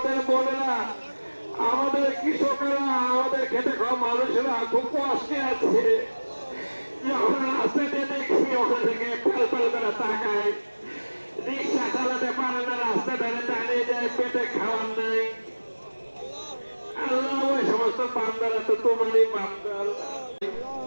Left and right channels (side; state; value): both; inverted; correlation -1.00